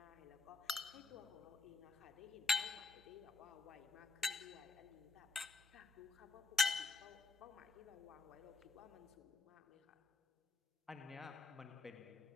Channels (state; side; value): quieter; right; 3.6 dB